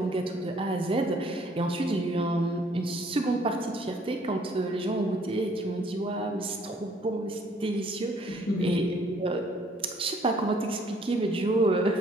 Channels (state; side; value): normal; both; correlation 0.62